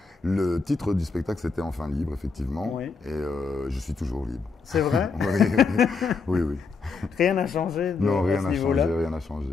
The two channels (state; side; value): quieter; right; 4.7 dB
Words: Le titre du spectacle, c'était Enfin libre, effectivement. Oui. Et je suis toujours libre. C'est vrai? Oui. Rien n'a changé Non, rien n'a niveau-là. changé, rien n'a changé.